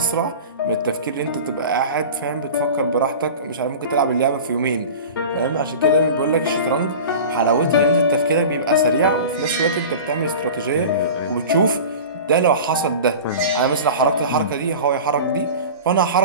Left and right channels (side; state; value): both; inverted; correlation -0.35